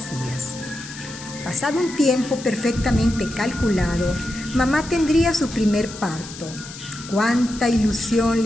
Pasado un tiempo perfectamente calculado, mamá tendría su primer parto. Cuánta ilusión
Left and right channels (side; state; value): left; noise; hiss, 14 dB below the sound